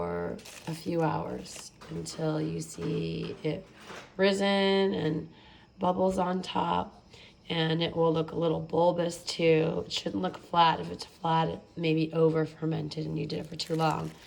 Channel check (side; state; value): both; identical; correlation 1.00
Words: a few hours until you see it risen and bubbles on top, and it will look a little bulbous too. It shouldn't look flat. If it's flat, it may be over fermented and you did it for too long.